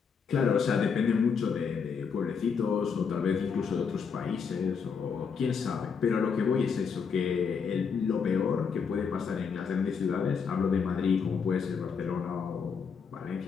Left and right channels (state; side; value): quieter; right; 6.1 dB